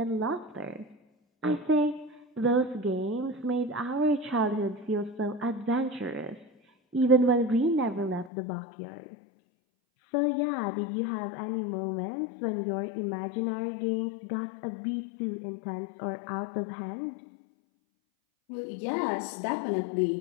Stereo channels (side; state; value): right; drops out; at 8.3 s